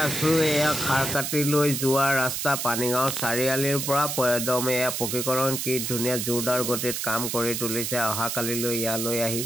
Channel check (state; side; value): noise; right; hiss, 3 dB below the sound